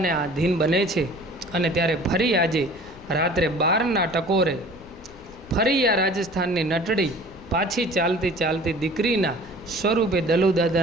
આધીન બને છે. અને ત્યારે ફરી આજે રાત્રે 12ના ટકોરે ફરી આ રાજસ્થાનની નટડી પાછી ચાલતી ચાલતી દીકરીના સ્વરૂપે દલુ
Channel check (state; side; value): noise; left; rumble, 21 dB below the sound